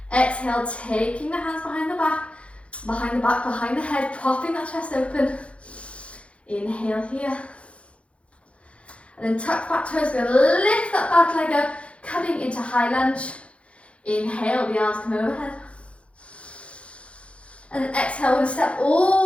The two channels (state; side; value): late; right; 0.061 ms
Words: Exhale, taking the hands behind the back, behind the head, popping that chest open. Inhale here. And then tuck back toes, going to lift that back leg up, coming into high lunge. Inhale, the arms come overhead. And then exhale, we're going to step